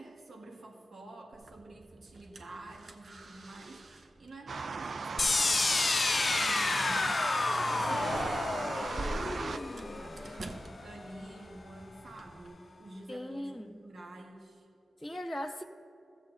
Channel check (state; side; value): normal; both; correlation 0.93